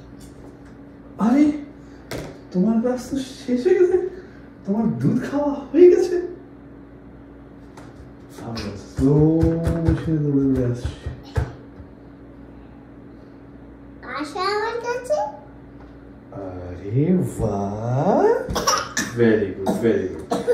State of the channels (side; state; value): both; identical; correlation 1.00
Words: আরে তোমার গ্লাস তো শেষ হয়ে গেছে, তোমার দুধ খাওয়া হয়ে গেছে। আমি স্লো মোশনে দৌড়ে দৌড়ে আসছি। আসো আমার কাছে। আরে বাহ, ভেরি গুড ভেরি গুড।